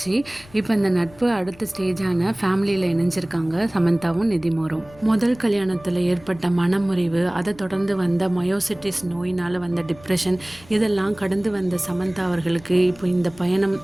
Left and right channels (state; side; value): noise; left; rumble, 23 dB below the sound